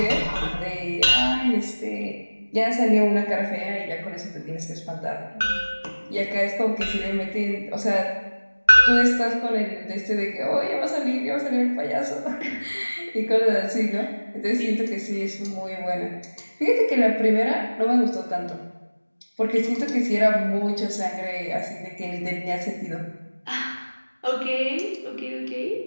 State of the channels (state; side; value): inverted; both; correlation -1.00